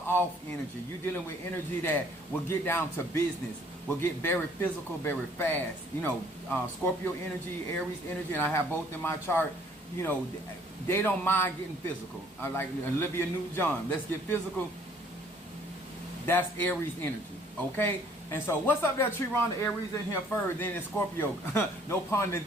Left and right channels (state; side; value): normal; both; correlation 0.60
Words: off energy. You're dealing with energy that will get down to business, will get very physical, very fast. You know, Scorpio energy, Aries energy, and I have both in my chart. You know, they don't mind getting physical. I like Olivia Newton-John. Let's get physical. That's Aries energy, okay? And so, what's up there, Chiron? The Aries in here first, then it's Scorpio. No pun